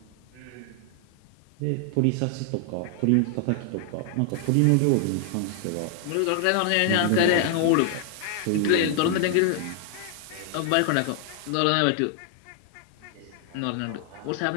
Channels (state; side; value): different; both; correlation 0.00